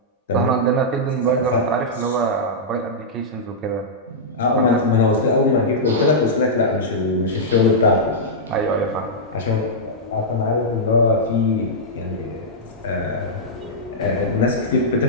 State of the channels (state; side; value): normal; both; correlation -0.10